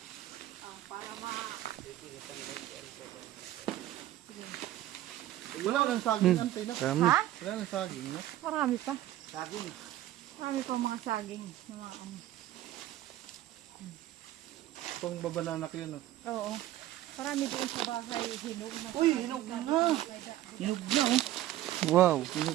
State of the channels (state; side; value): quieter; left; 13.9 dB